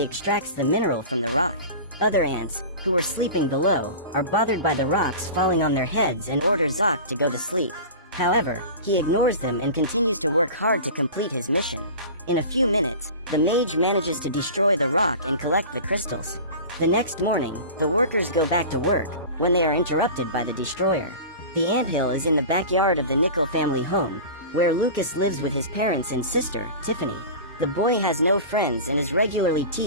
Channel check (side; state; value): both; inverted; correlation -0.34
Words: extracts the mineral from the rock. Other ants, who were sleeping below, are bothered by the rocks falling on their heads and order Zoc to go to sleep. However, he ignores them and continues to work hard to complete his mission. In a few minutes, the mage manages to destroy the rock and collect the crystals. The next morning, the workers go back to work, when they are interrupted by the destroyer. The anthill is in the backyard of the Nickel family home, where Lucas lives with his parents and sister, Tiffany. The boy has no friends and is regularly